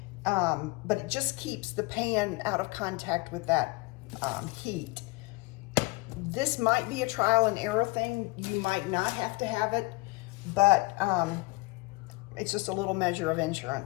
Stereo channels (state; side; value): quieter; right; 24.6 dB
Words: But it just keeps the pan out of contact with that heat. This might be a trial and error thing. You might not have to have it, but it's just a little measure of